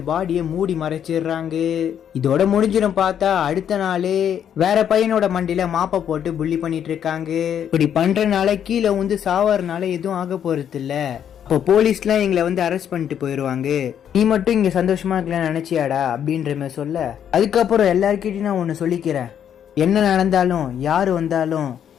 பாடியை மூடி மறைச்சிடுறாங்க. இதோட முடிஞ்சிடும். பார்த்தா அடுத்த நாளே வேற பையனோட மண்டியில மாப்பை போட்டு புள்ளி பண்ணிட்டு இருக்காங்க. இப்படி பண்றதுனால கீழே வந்து சாவறதுனால எதுவும் ஆக போறது இல்ல. இப்போ போலீஸ்லாம் எங்களை வந்து அரெஸ்ட் பண்ணிட்டு போயிடுவாங்க, நீ மட்டும் இங்க சந்தோஷமா இருக்கலாம்னு நினைச்சியாடா அப்படின்ற மாதிரி சொல்ல, அதுக்கப்புறம் எல்லாருக்கிட்டையும் நான் ஒன்று சொல்லிக்கிறேன், என்ன நடந்தாலும் யாரு வந்தாலும்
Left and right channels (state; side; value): quieter; right; 9.1 dB